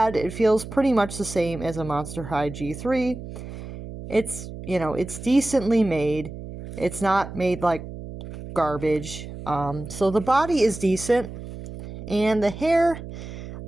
It feels pretty much the same as a Monster High G3. It's, you know, it's decently made. It's not made like garbage. So the body is decent. And the hair,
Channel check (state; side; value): noise; right; hum, 11 dB below the sound